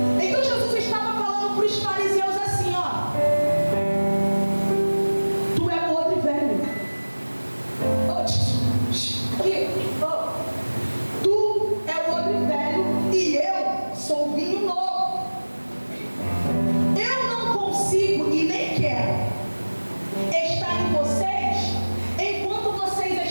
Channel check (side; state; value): both; inverted; correlation -1.00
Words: Então Jesus estava falando para os fariseus assim, ó: tu é o odre velho. Tu é o odre velho e eu sou o vinho novo. Eu não consigo e nem quero estar em vocês enquanto